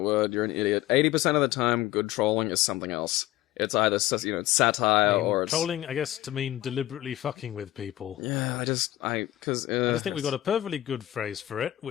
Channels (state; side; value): quieter; right; 15.0 dB